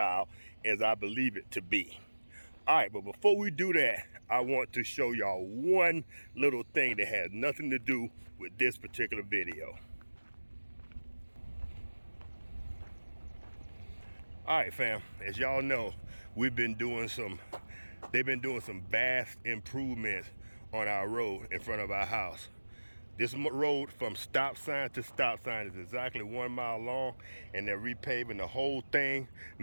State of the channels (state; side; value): inverted; both; correlation -1.00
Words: as I believe it to be. All right, but before we do that, I want to show y'all one little thing that has nothing to do with this particular video. All right, fam, as y'all know, they've been doing some vast improvements on our road in front of our house. This road from stop sign to stop sign is exactly 1 mile long, and they're repaving the whole thing,